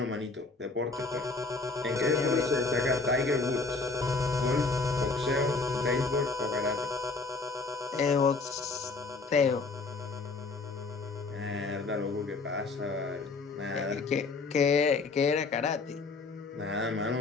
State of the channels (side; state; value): right; quieter; 3.9 dB